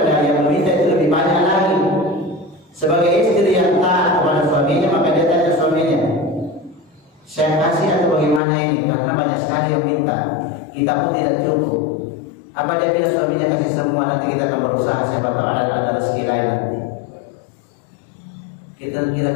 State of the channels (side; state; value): right; drops out; at 8.4 s